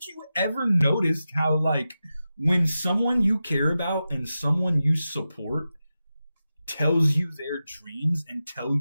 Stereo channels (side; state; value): both; inverted; correlation -0.92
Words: you ever noticed how, like, when someone you care about and someone you support tells you their dreams and